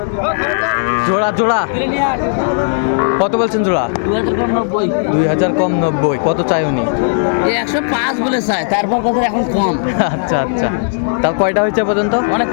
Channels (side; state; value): right; silent; digital silence